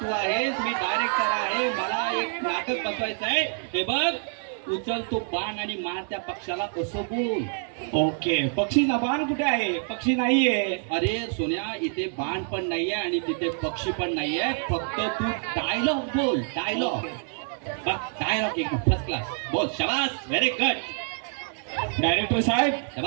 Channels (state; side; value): silent; left; 56 dB below the other